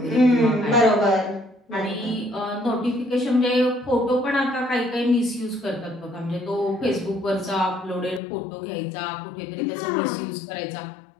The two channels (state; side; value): drops out; right; at 8.2 s